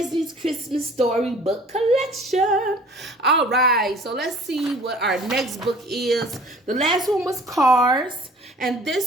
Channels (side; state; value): both; normal; correlation 0.50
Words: Christmas Storybook collection. All right, so let's see what our next book is. The last one was Cars, and